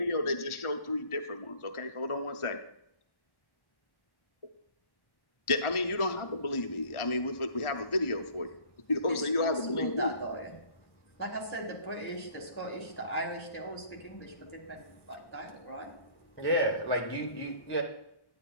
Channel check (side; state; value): right; late; 1.4 ms